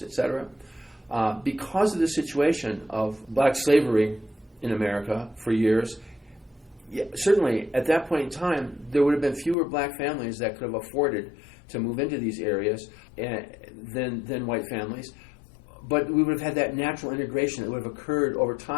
et cetera, because of the situation of black slavery in America for years, yeah, certainly at that point in time, there would have been fewer black families that could have afforded to move into these areas than white families. But we would have had that natural integration that would have occurred over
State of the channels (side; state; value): right; drops out; at 9.6 s